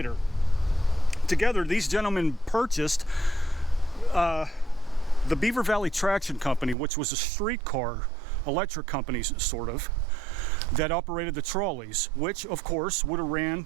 Together, these gentlemen purchased the Beaver Valley Traction Company, which was a streetcar electric company, sort of, that operated the trolleys, which, of course, would have ran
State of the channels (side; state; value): left; drops out; at 6.8 s